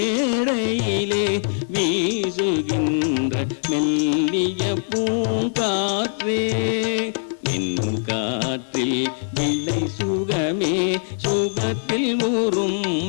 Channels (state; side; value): silent; right; 64 dB below the other